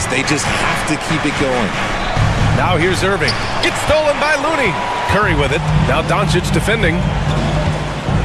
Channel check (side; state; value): both; identical; correlation 1.00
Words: They just have to keep it going. Now here's Irving. It's stolen by Looney. Curry with it. Now Doncic defending.